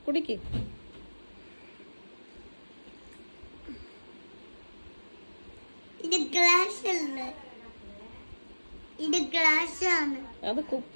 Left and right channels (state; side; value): inverted; both; correlation -1.00